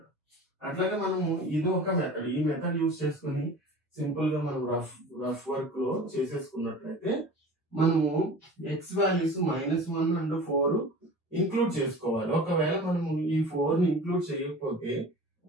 అట్లాగే మనము ఇది ఒక మెథడ్. ఈ మెథడ్ యూజ్ చేసుకుని సింపుల్ గా మనం రఫ్ వర్క్ లో చేసేసుకున్నట్లయితే మనము x వాల్యూస్ -1 అండ్ 4 ఇంక్లూడ్ చేసుకోవాలి. ఒకవేళ మనము ఈ 4 ని ఇంక్లూడ్ చేయకపోతే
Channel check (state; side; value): normal; both; correlation 0.39